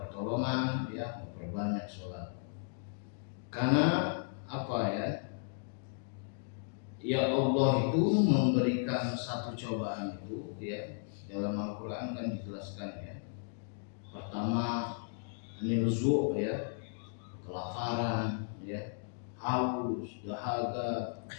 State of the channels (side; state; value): right; silent; digital silence